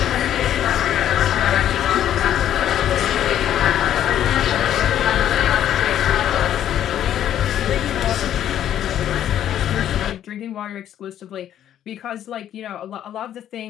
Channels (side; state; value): right; quieter; 10.9 dB